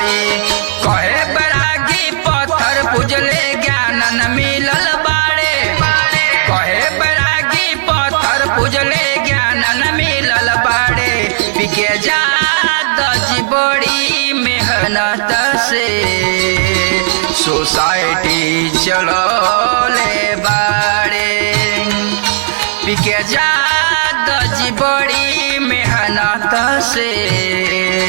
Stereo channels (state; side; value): silent; left; digital silence